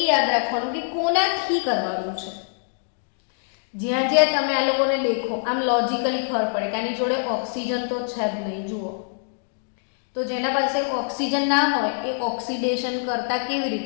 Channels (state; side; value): silent; right; 62 dB below the other